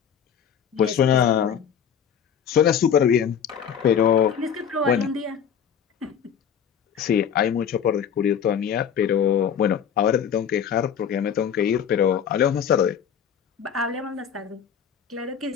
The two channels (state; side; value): quieter; right; 8.1 dB